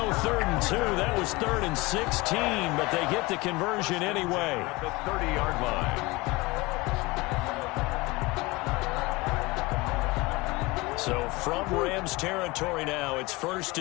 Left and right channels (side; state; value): right; quieter; 23.0 dB